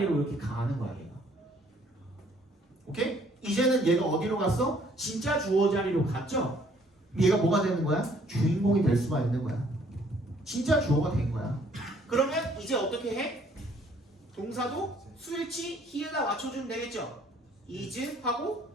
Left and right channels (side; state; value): both; normal; correlation 0.62